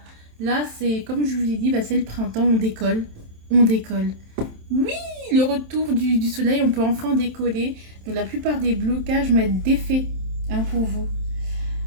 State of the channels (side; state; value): left; late; 27 ms